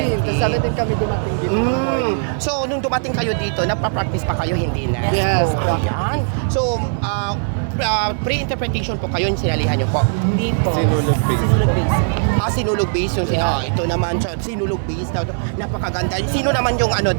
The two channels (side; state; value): left; silent; 67 dB below the other